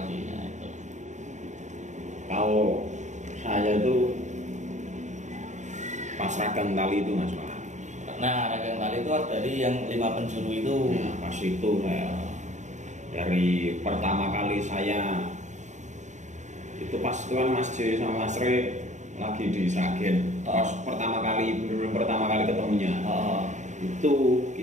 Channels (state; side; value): late; left; 0.34 ms